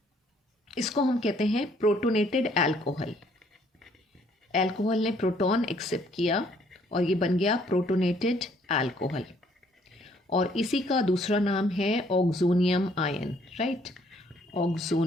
इसको हम कहते हैं प्रोटोनेटेड अल्कोहल। अल्कोहल ने प्रोटॉन एक्सेप्ट किया और ये बन गया प्रोटोनेटेड अल्कोहल, और इसी का दूसरा नाम है oxonium ion, right,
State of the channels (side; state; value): both; normal; correlation 0.64